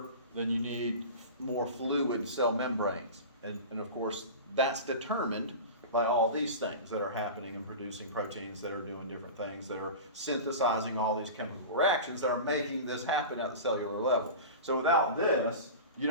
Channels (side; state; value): both; inverted; correlation -0.31